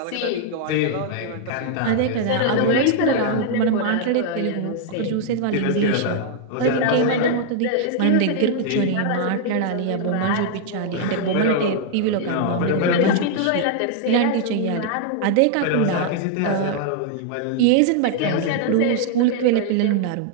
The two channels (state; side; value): different; both; correlation 0.00